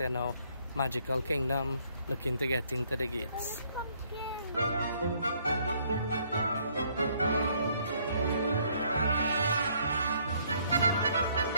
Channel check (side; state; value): both; inverted; correlation -0.65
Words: now Magical Kingdom, looking to get into the gates.